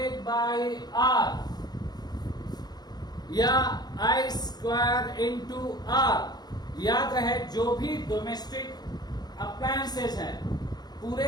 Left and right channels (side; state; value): right; late; 0.20 ms